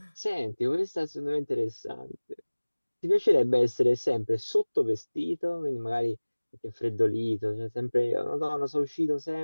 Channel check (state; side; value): inverted; both; correlation -1.00